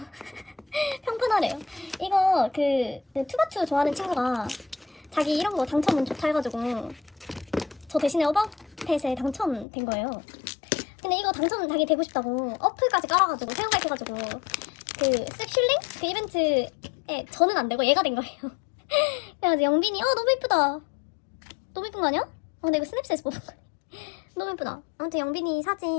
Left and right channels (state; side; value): drops out; right; at 9.7 s